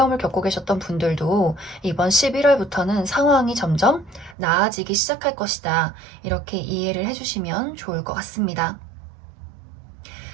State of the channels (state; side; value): drops out; left; at 4.4 s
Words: 겪고 계셨던 분들도 이번 11월부터는 상황이 점점 나아지기 시작할 것이다. 이렇게 이해를 해주시면 좋을 것 같습니다.